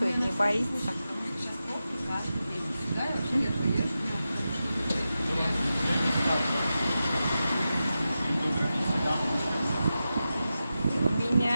не боится. У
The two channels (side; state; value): both; inverted; correlation -0.92